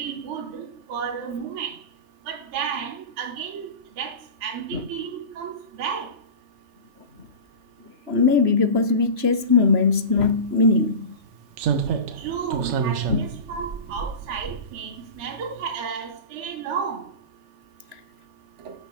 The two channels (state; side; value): late; left; 3.0 ms